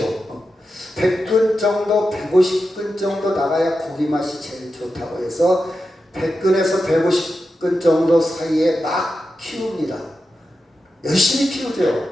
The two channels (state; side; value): normal; both; correlation 0.90